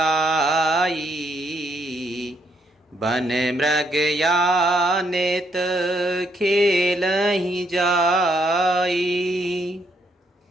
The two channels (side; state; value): both; normal; correlation 0.73